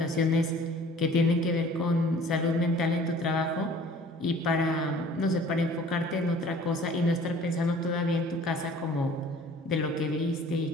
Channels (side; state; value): both; normal; correlation 0.50